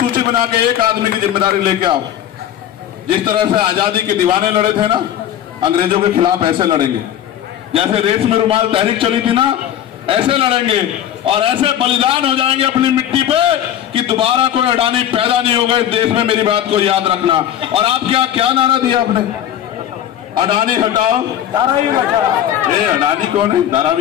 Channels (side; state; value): right; quieter; 10.8 dB